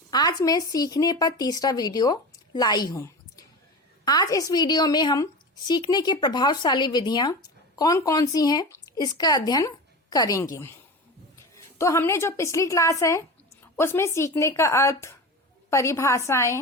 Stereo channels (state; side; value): normal; both; correlation 0.28